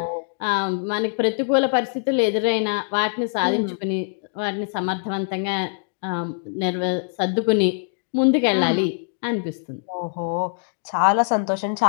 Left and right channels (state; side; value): silent; right; digital silence